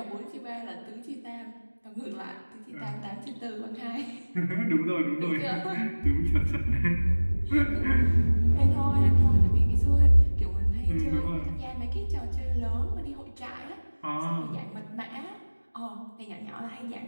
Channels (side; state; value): both; inverted; correlation -1.00